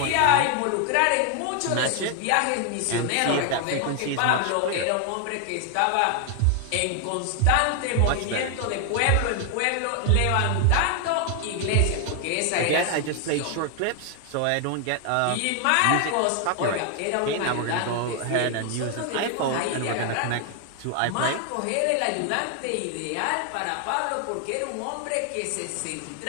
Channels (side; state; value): both; different; correlation 0.00